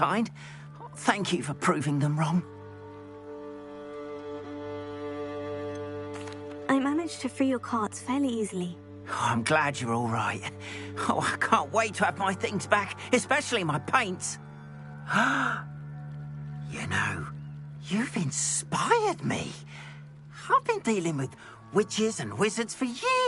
Thank you for proving them wrong. I managed to free your carts fairly easily. Oh, I'm glad you're all right. Oh, I can't wait to have my things back, especially my paints. You know, you've inspired me. I've been dealing with witches and wizards for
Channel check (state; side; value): identical; both; correlation 1.00